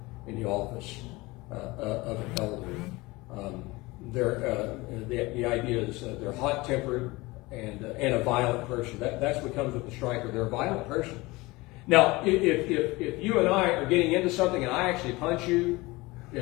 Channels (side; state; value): right; quieter; 22.1 dB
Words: in the office of an elder. The idea is they're hot-tempered and a violent person. That's what comes with the striker. They're a violent person. Now, if you and I are getting into something and I actually punch you,